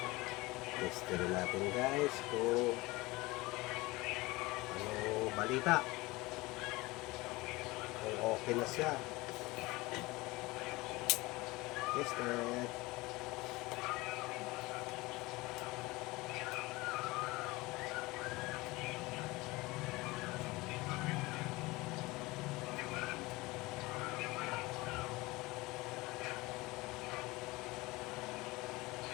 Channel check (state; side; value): quieter; right; 21.7 dB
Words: testin natin guys kung ano balita, kung okay na siya. Tested.